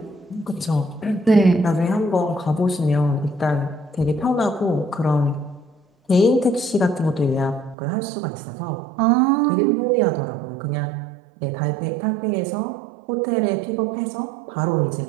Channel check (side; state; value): left; drops out; at 7.8 s